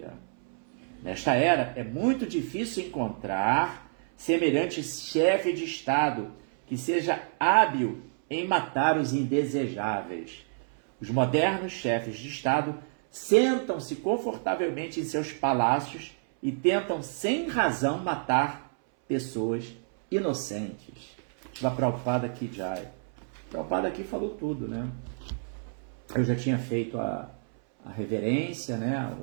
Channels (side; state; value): left; silent; 59 dB below the other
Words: Nesta era, é muito difícil encontrar semelhante chefe de Estado que seja hábil em matar os indesejáveis. Os modernos chefes de Estado sentam-se confortavelmente em seus palácios e tentam sem razão matar pessoas inocentes. Shila Prabhupada aqui, Jai. Prabhupada aqui falou tudo, né? Eu já tinha feito a reverência, né?